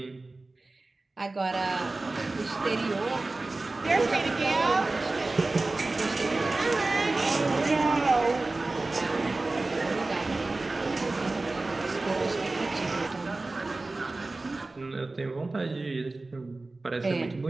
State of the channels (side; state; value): left; quieter; 3.2 dB